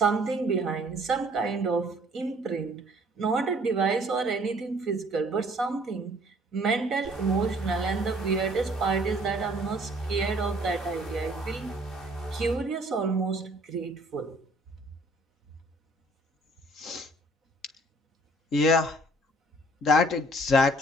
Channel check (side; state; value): both; normal; correlation 0.58